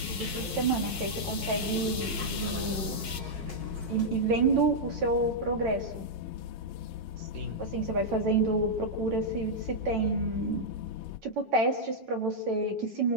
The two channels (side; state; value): both; normal; correlation -0.06